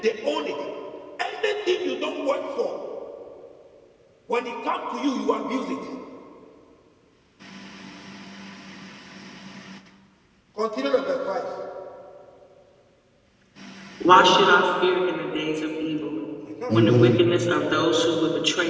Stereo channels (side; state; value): both; identical; correlation 1.00